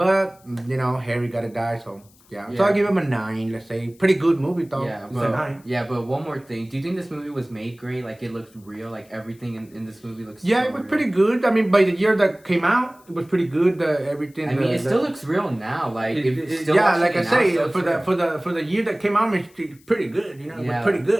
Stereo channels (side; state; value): left; noise; hiss, 30 dB below the sound